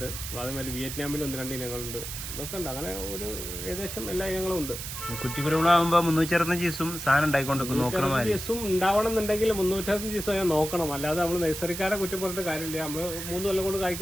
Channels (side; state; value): right; noise; hiss, 7 dB below the sound